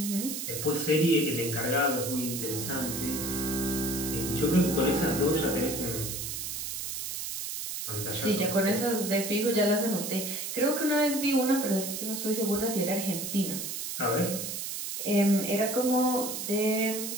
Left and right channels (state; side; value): noise; right; hiss, 5 dB below the sound